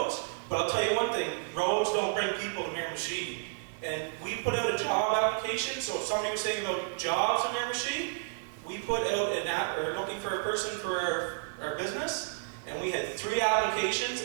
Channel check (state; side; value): silent; left; 57 dB below the other